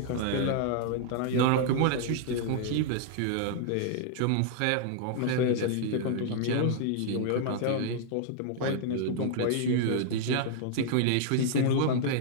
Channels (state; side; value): different; both; correlation -0.01